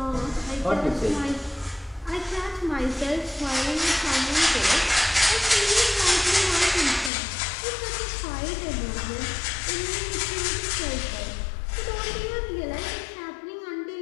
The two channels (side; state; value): right; drops out; at 7.1 s